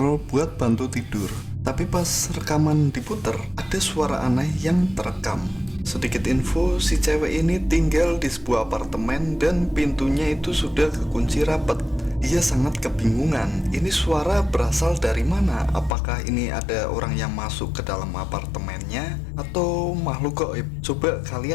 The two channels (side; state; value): right; drops out; at 15.9 s